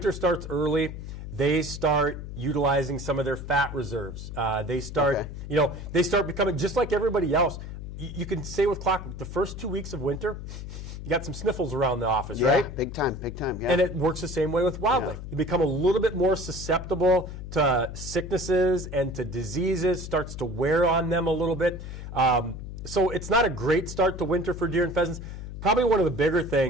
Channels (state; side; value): noise; left; hum, 9 dB below the sound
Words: starts early, they start utilizing some of their fat reserves. They start, you know, they start becoming just like everybody else. You can say with clockwork, the first 2 weeks of winter, you got some sniffles around the office, right? Big time, yeah. And it works the same way with wildlife. You become a little bit more susceptible to sicknesses and to diseases, starts to wear on them a little bit. So it's not a great start to winter for deer and pheasants. Probably one of the bigger